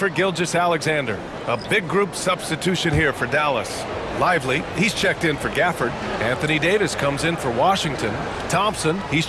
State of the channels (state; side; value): identical; both; correlation 1.00